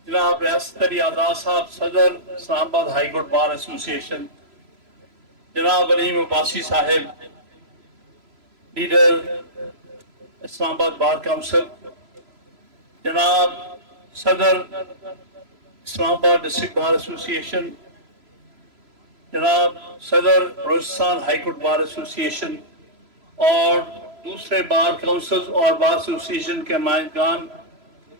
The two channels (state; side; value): late; left; 3.0 ms